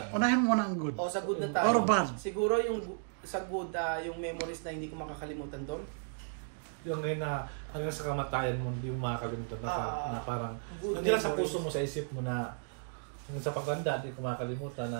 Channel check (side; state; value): left; silent; digital silence